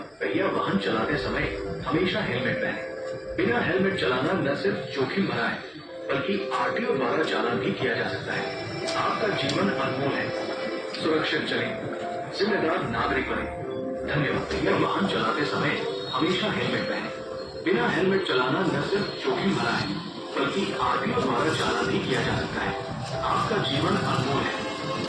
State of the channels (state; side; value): identical; both; correlation 1.00